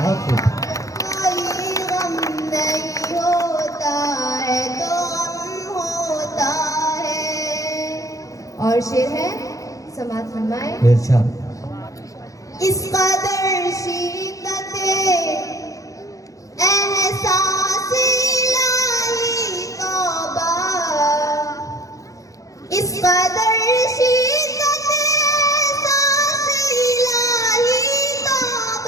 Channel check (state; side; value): late; right; 0.16 ms